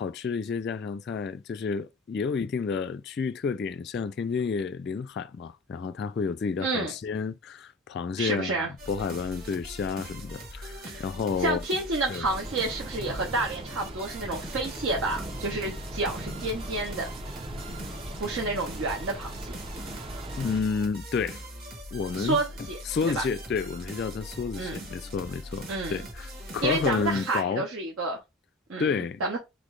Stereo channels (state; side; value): normal; both; correlation 0.31